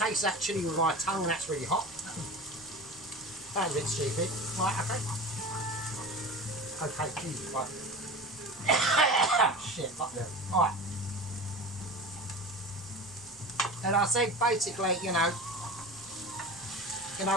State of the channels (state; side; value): normal; both; correlation 0.32